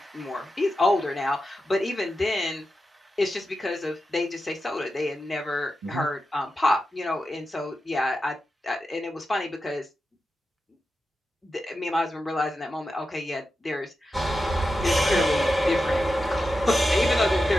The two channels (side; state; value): both; normal; correlation 0.90